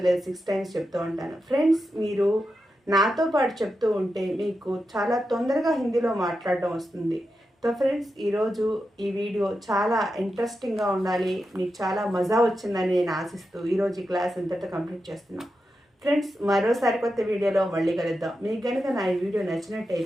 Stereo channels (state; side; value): normal; both; correlation 0.89